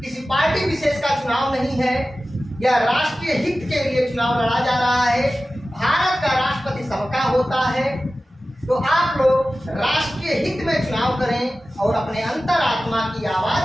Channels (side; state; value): both; normal; correlation 0.95